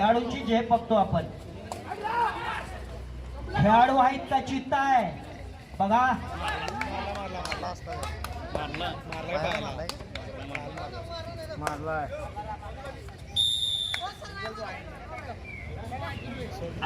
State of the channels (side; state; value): both; identical; correlation 1.00